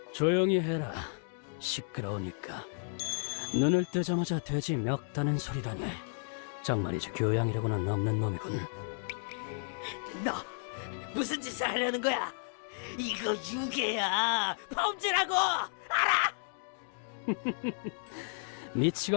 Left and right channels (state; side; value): silent; right; 56 dB below the other